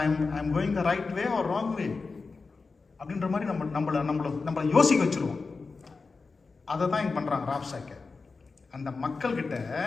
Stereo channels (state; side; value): quieter; right; 4.3 dB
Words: I am going the right way or wrong way அப்படின்ற மாதிரி நம்மளை யோசிக்க வச்சுருவோம். அதை தான் இங்கே பண்ணுறாங்க ராப்சாக்கை. அந்த மக்கள்கிட்ட